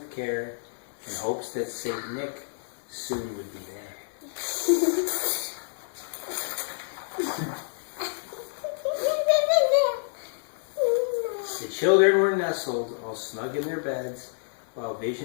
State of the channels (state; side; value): silent; right; 58 dB below the other